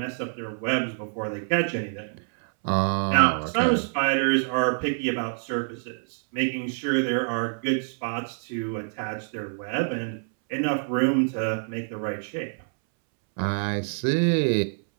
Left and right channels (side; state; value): left; silent; 61 dB below the other